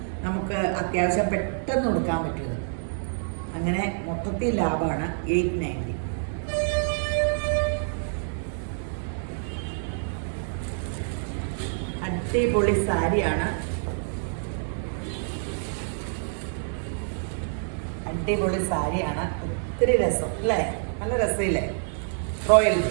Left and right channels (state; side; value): silent; left; digital silence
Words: നമുക്ക് അത്യാവശ്യം പെട്ടെന്ന് കൊടുക്കാൻ പറ്റും. അങ്ങനെ മൊത്തത്തിൽ ലാഭമാണ്. 890. അടിപൊളി സാരിയാണ്. അടിപൊളി സാരിയാണ്. ഒത്തിരി രസം അല്ലേ. നല്ല രസമില്ലേ. റോയൽ